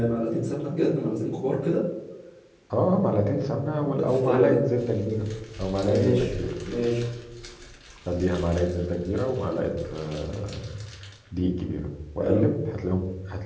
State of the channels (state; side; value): identical; both; correlation 1.00